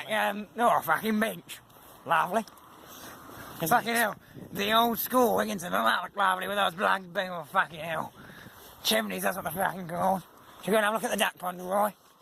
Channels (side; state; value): both; identical; correlation 1.00